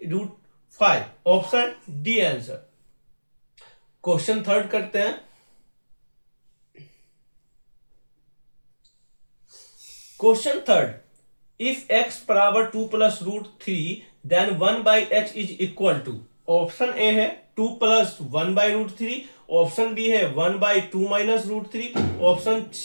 √5, option D answer. Question third करते हैं। क्वेश्चन थर्ड, इफ x बराबर 2+√3 then 1/x is equal to. Option A है 2 + 1/√3, ऑप्शन बी है 1/2 - √3, ऑप्शन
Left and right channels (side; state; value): both; inverted; correlation -1.00